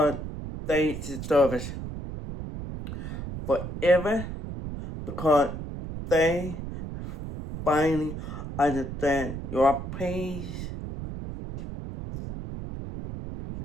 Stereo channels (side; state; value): right; noise; rumble, 7 dB below the sound